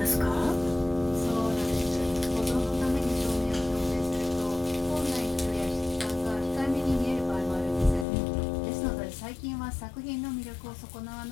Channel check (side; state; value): right; drops out; at 8.1 s